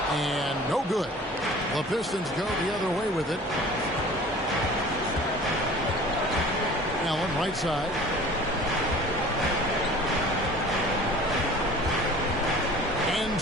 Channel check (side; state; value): both; normal; correlation 0.45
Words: And no good. The Pistons go the other way with it. Allen right side. And